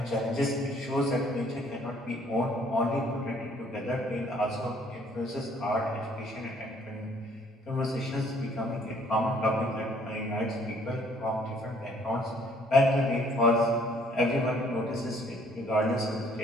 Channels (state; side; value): normal; both; correlation 0.61